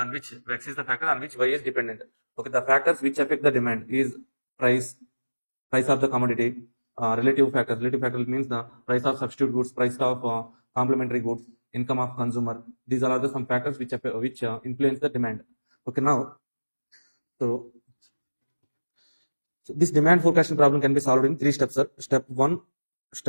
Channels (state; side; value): inverted; both; correlation -1.00